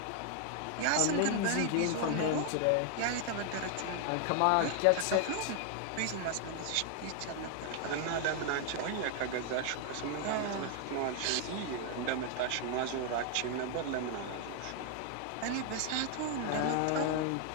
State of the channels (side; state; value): both; different; correlation 0.00